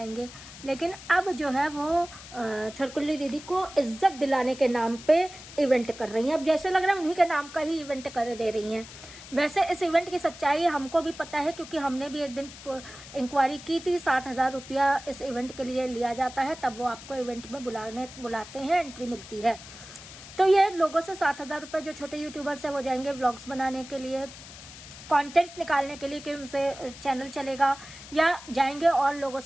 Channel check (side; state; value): left; noise; hiss, 16 dB below the sound